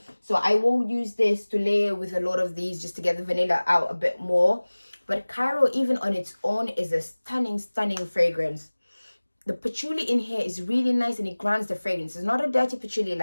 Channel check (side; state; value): both; inverted; correlation -1.00